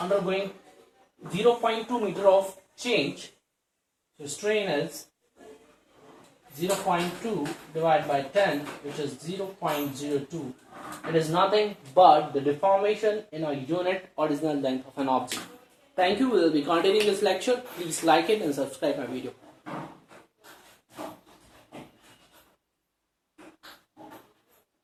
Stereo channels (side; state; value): both; identical; correlation 1.00